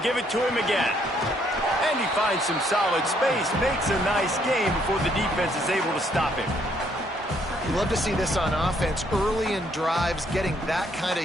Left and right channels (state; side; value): normal; both; correlation 0.69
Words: give it to him again. And he finds some solid space, makes a nice game before the defense is able to stop him. You love to see this on offense. Early in drives, getting that kind